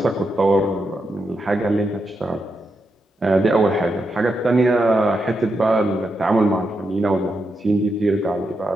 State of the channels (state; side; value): normal; both; correlation 0.84